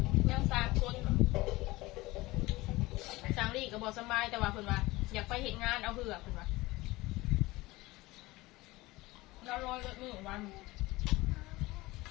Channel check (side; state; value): right; quieter; 20.2 dB